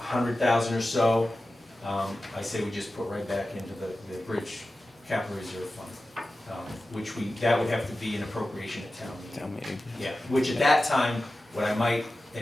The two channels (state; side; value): normal; both; correlation 0.94